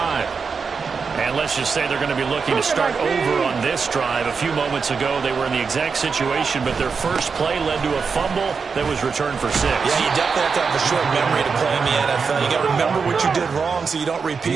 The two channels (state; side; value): quieter; left; 5.4 dB